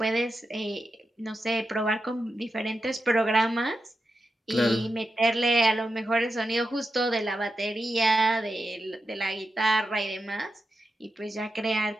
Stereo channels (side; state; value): both; normal; correlation 0.88